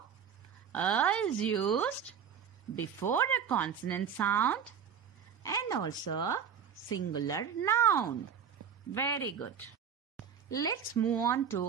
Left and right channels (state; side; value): quieter; left; 7.6 dB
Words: A is used before a consonant sound and also singular noun. Very good. Let's move on